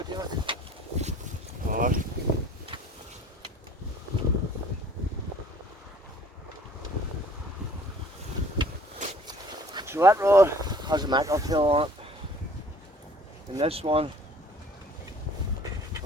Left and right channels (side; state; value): both; normal; correlation 0.53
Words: David. Oh. So that rod has a mackerel tail on it. And this one,